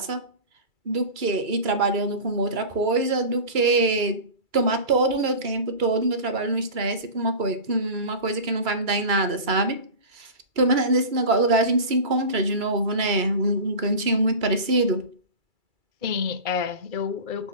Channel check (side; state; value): left; late; 2.3 ms